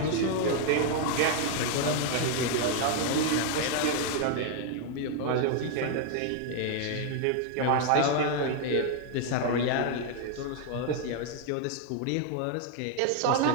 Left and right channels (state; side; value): different; both; correlation 0.00